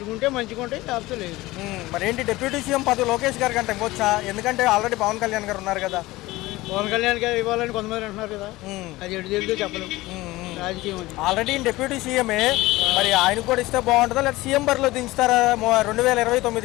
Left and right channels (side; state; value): right; quieter; 19.0 dB